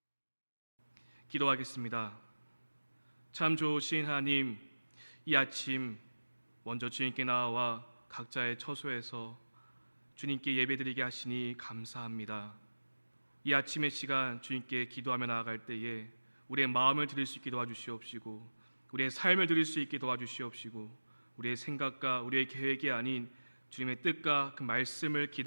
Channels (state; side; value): inverted; both; correlation -1.00